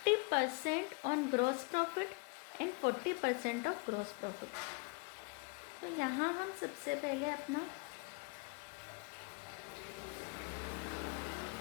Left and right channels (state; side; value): quieter; right; 31.5 dB